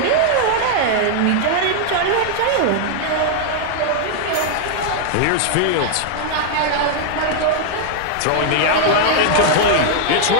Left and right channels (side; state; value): both; different; correlation 0.00